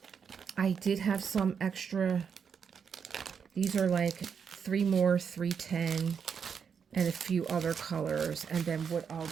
I did have some extra. These are like 3 more 310 and a few other colors. And then what I'll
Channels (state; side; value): quieter; left; 6.7 dB